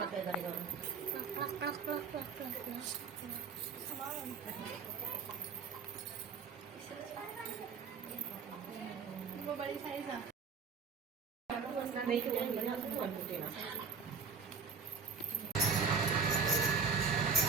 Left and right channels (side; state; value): left; quieter; 5.2 dB